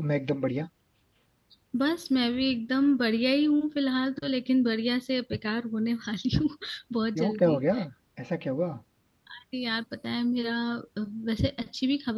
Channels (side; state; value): both; identical; correlation 1.00